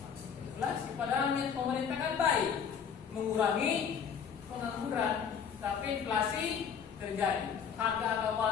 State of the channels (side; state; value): right; quieter; 7.1 dB